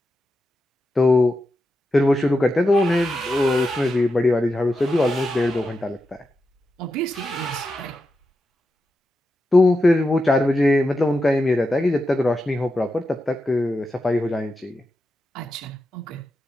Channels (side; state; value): both; normal; correlation 0.89